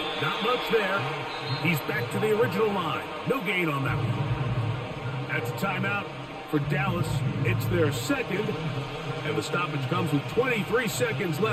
not much there. He's back to the original line. No gain on that one. That's a timeout for Dallas. It's their 2nd, and the stoppage comes with 23 seconds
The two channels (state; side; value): identical; both; correlation 1.00